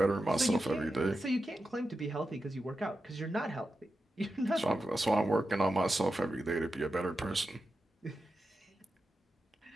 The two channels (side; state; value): both; normal; correlation 0.90